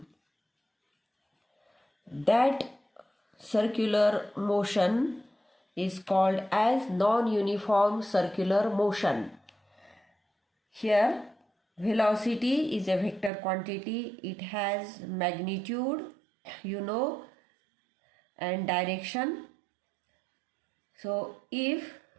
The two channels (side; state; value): left; drops out; at 13.3 s